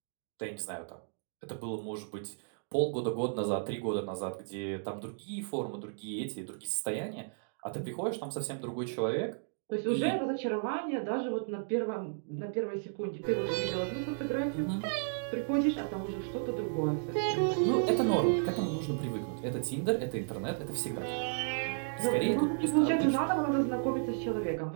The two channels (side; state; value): left; silent; digital silence